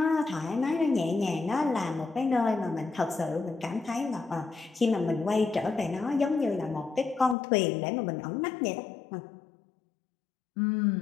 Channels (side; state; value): right; drops out; at 7.4 s